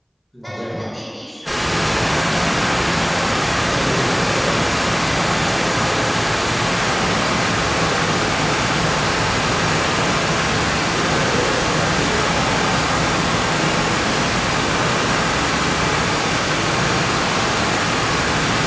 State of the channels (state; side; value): identical; both; correlation 1.00